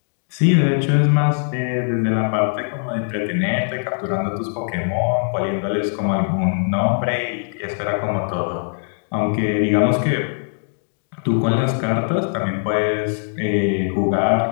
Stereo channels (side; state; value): right; silent; digital silence